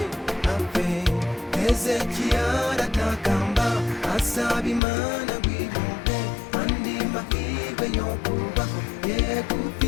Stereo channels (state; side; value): drops out; right; at 4.8 s